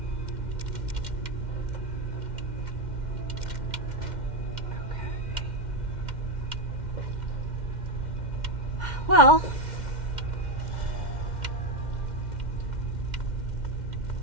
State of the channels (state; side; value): late; left; 2.1 ms